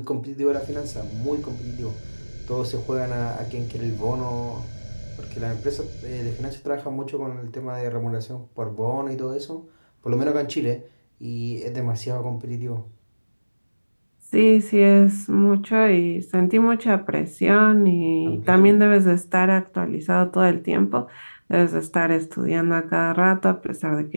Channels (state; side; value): inverted; both; correlation -1.00